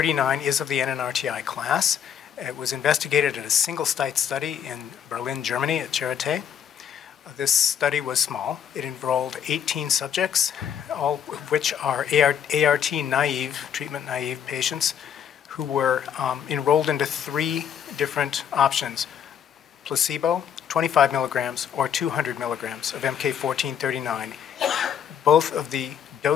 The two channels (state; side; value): quieter; right; 8.6 dB